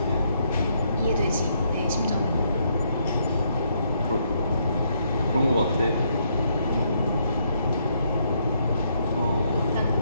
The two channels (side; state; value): both; inverted; correlation -0.74